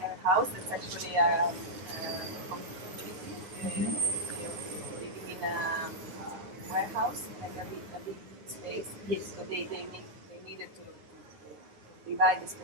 house. That's actually a community living in a warehouse, like a big space. Yes. So they needed to divide the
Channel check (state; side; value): late; left; 9.6 ms